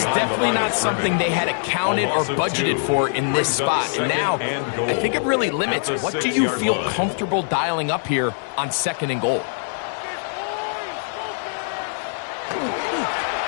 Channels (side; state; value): right; silent; digital silence